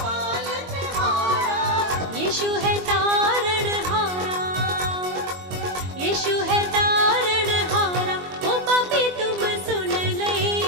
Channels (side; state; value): left; late; 22 ms